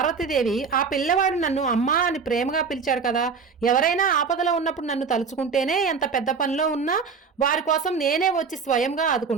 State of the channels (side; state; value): left; quieter; 5.4 dB